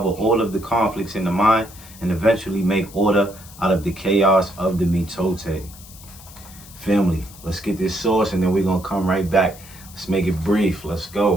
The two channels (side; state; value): left; noise; hiss, 19 dB below the sound